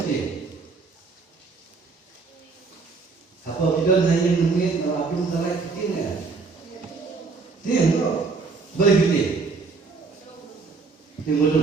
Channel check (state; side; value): quieter; left; 4.5 dB